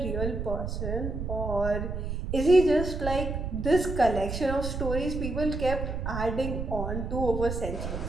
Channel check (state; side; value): noise; right; rumble, 4 dB below the sound